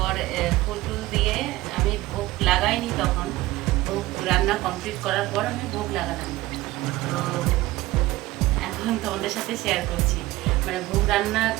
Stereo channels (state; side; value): quieter; left; 18.0 dB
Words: ফুল টুল দিয়ে আমি ভোগ লাগাইনি, তখন ভোগ রান্না কমপ্লিট করার পর আমি ভোগ লাগালাম। তো এখন তোমাদের সাথে শেয়ার করছি। ভোগ রান্না